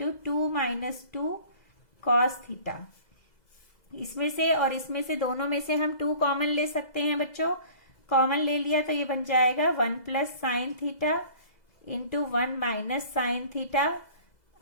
2 minus 2 cos theta. इसमें से और इसमें से दोनों में से हम 2 कॉमन ले सकते हैं बच्चों। कॉमन ले लिया तो ये बन जाएगा 1 plus sine theta into 1 minus sine theta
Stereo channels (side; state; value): right; late; 2.0 ms